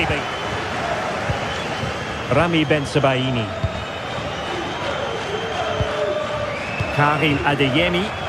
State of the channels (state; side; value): identical; both; correlation 1.00